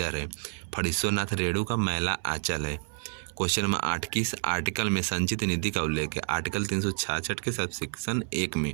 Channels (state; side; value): silent; left; 58 dB below the other